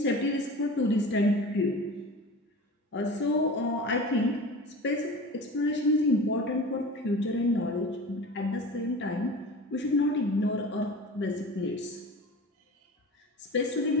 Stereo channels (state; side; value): normal; both; correlation 0.35